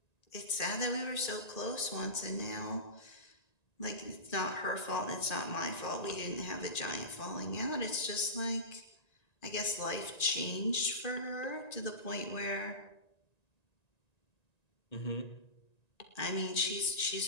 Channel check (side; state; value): right; late; 1.9 ms